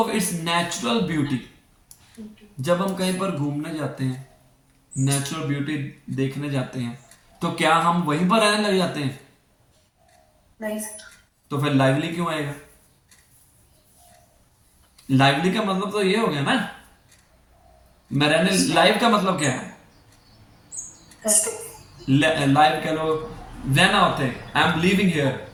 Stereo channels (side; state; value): both; identical; correlation 1.00